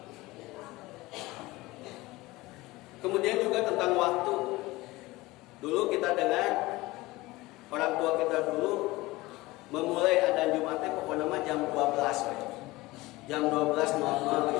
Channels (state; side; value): quieter; right; 20.2 dB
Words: Kemudian juga tentang waktu. Dulu kita dengar orang tua kita dulu memulai adzan Jumatnya pokoknya jam 12 we. Jam 12.00